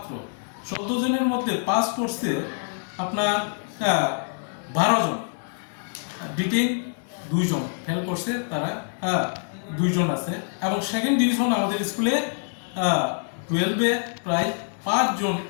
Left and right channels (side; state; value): right; silent; 61 dB below the other